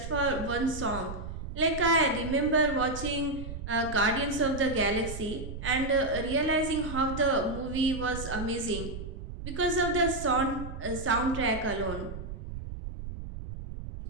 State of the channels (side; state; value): right; noise; rumble, 8 dB below the sound